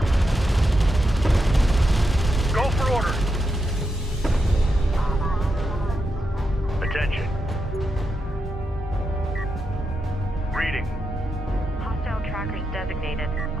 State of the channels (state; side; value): normal; both; correlation 0.85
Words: Go for order. Attention. Reading. Hostile trackers designated.